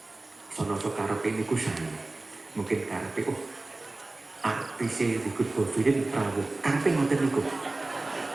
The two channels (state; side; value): quieter; left; 3.0 dB